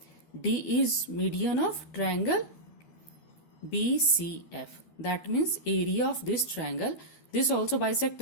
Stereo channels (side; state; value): right; late; 12 ms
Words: D is median of triangle BCF. That means area of this triangle. This also